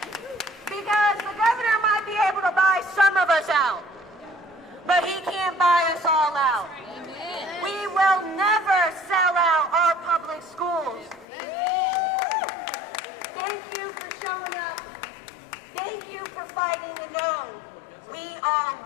Because the governor might be able to buy some of us out, but he can't buy us all out. We will never sell out our public schools. Thank you for showing up. Thank you for fighting the no. We all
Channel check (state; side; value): drops out; right; at 11.2 s